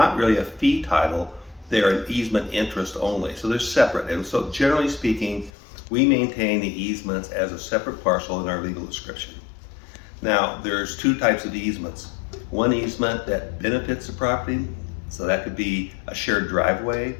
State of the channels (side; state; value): right; drops out; at 5.5 s